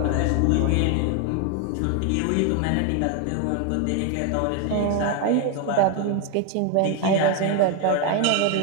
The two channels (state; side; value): different; both; correlation 0.01